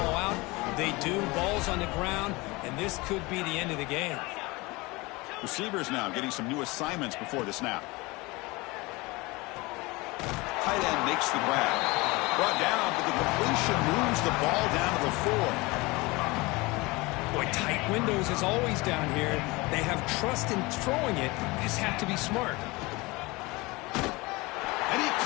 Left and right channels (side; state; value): right; quieter; 23.5 dB